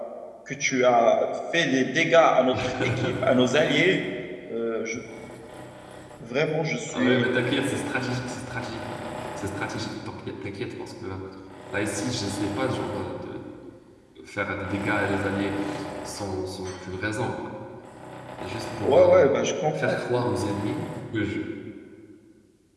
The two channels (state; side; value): identical; both; correlation 1.00